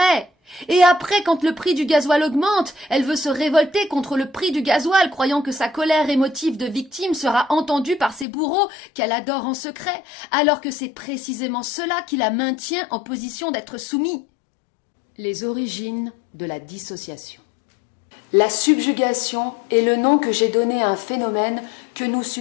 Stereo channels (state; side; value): drops out; right; at 8.2 s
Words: Et après, quand le prix du gasoil augmente, elle veut se révolter contre le prix du gasoil, croyant que sa colère émotive de victime sera entendue par ses bourreaux qu'elle adore en secret, alors que c'est précisément cela qui la maintient en position d'être soumis. Les origines de la dissociation. La subjugation est le nom que j'ai donné à un phénomène que nous